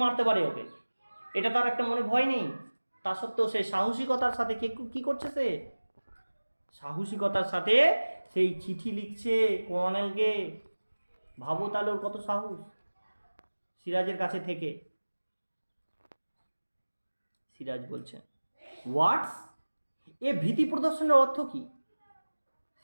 মারতে পারে ওকে। এটা তার একটা মনে ভয় নেই, তা সত্ত্বেও সে সাহসিকতার সাথে কি করছে, সে সাহসিকতার সাথে সেই চিঠি লিখছে কর্নেলকে। ভাবো তাহলে ওর কত সাহস, সিরাজের কাছে থেকে। সিরাজ বলছে হোয়াটস, এ ভীতি প্রদর্শনের অর্থ কি?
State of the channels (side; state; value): both; inverted; correlation -1.00